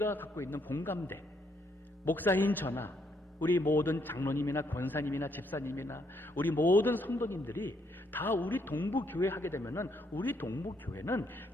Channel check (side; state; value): both; normal; correlation 0.73